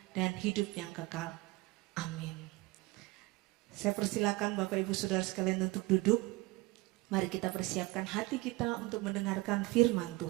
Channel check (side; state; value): left; quieter; 22.1 dB